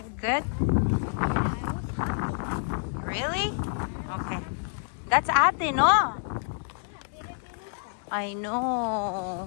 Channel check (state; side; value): silent; right; digital silence